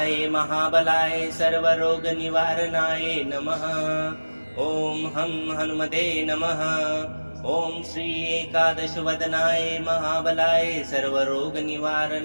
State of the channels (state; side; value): inverted; both; correlation -1.00